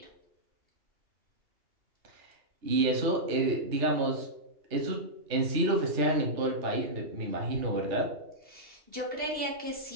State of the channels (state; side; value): late; left; 3.3 ms